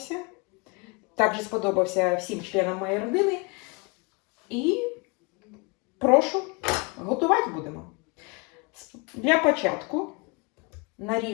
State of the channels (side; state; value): right; quieter; 30.1 dB